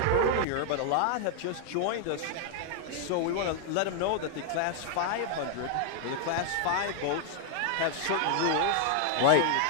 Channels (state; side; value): different; both; correlation 0.00